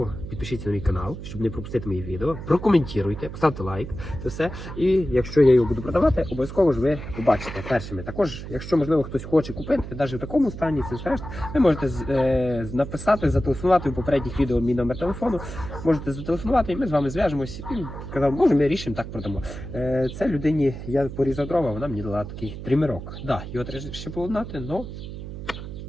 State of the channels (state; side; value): noise; right; hum, 10 dB below the sound